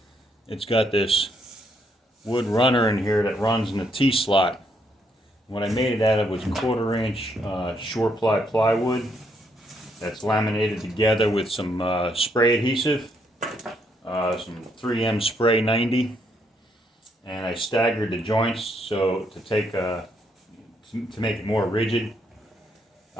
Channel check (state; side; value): normal; both; correlation 0.74